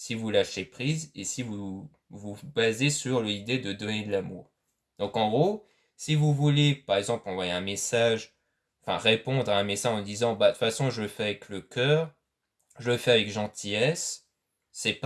vous lâchez prise et si vous vous basez sur l'idée de donner de l'amour. Donc en gros, si vous voulez, par exemple, envoyer un message, enfin répondre à un message en disant, bah de toute façon, je le fais avec le cœur, je le fais avec gentillesse, c'est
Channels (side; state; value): both; identical; correlation 1.00